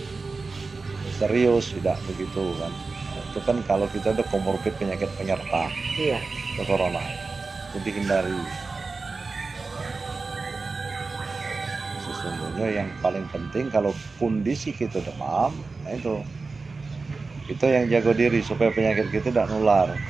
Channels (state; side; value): quieter; left; 4.0 dB